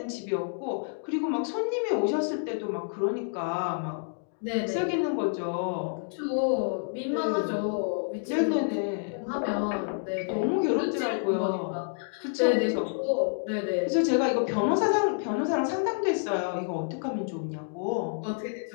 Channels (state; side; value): silent; right; digital silence